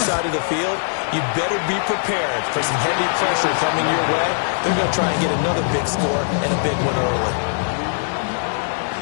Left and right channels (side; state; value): right; silent; digital silence